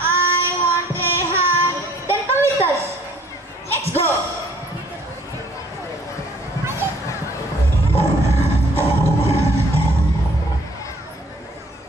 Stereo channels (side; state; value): both; normal; correlation 0.59